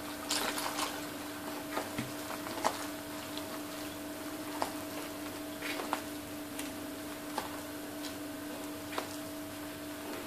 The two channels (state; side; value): identical; both; correlation 1.00